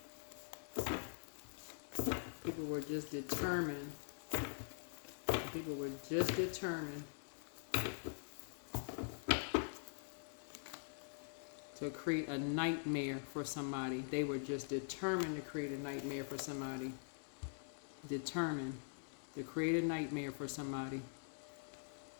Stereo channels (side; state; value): right; silent; digital silence